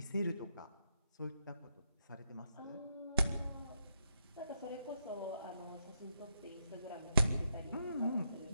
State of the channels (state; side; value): inverted; both; correlation -0.81